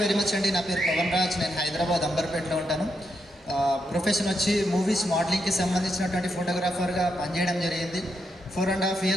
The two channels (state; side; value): normal; both; correlation 0.82